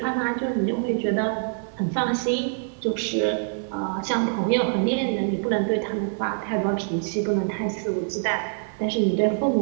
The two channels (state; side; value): silent; left; digital silence